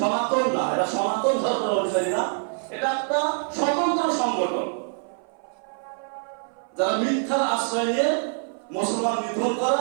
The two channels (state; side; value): silent; left; 57 dB below the other